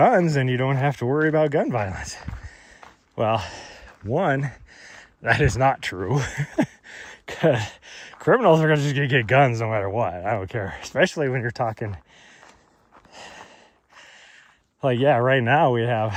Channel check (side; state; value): both; identical; correlation 1.00